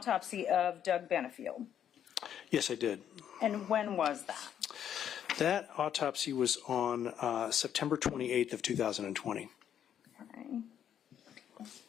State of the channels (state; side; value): quieter; right; 9.5 dB